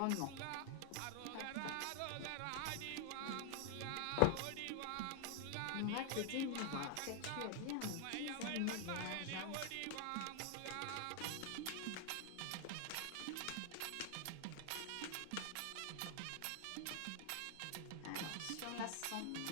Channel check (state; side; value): different; both; correlation 0.00